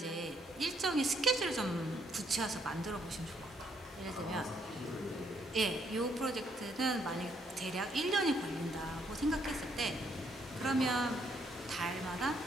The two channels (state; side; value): normal; both; correlation 0.71